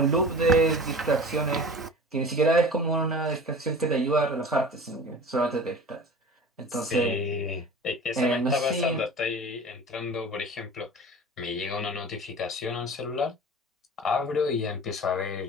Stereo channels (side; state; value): both; normal; correlation 0.38